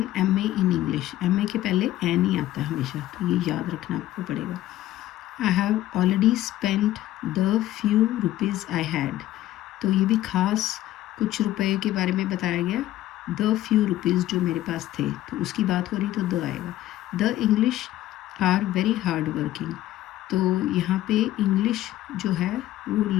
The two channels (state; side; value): quieter; right; 14.4 dB